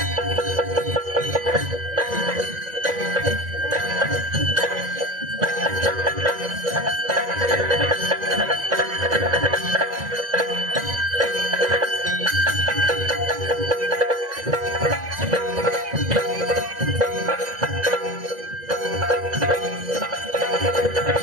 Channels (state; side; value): late; left; 2.0 ms